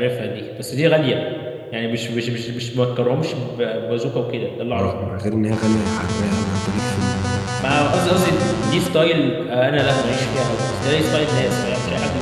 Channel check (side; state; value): both; identical; correlation 1.00